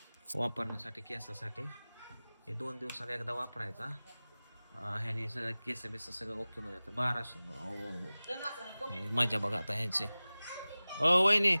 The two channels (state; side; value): inverted; both; correlation -0.98